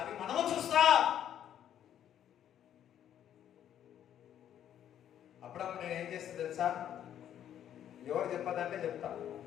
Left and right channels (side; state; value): right; quieter; 10.4 dB